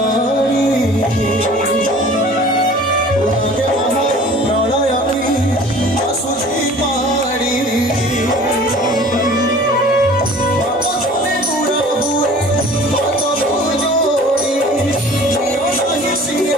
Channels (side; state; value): both; normal; correlation 0.46